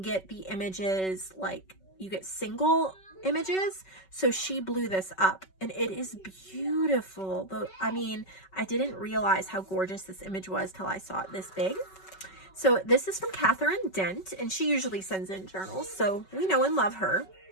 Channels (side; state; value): right; late; 5.3 ms